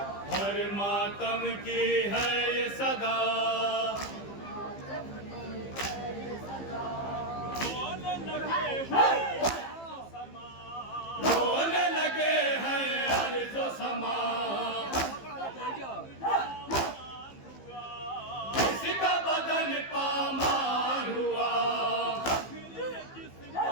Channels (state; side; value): late; right; 15 ms